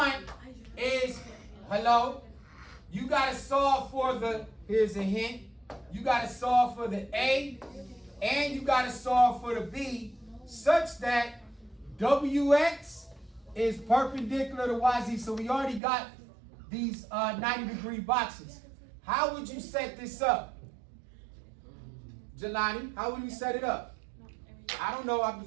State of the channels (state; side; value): drops out; left; at 15.8 s